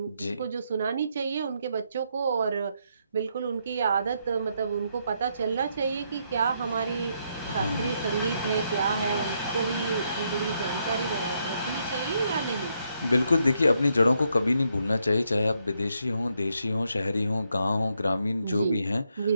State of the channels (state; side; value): inverted; both; correlation -0.77